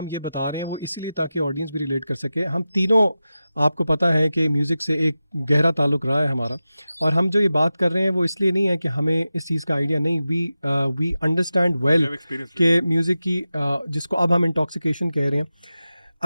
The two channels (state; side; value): inverted; both; correlation -0.94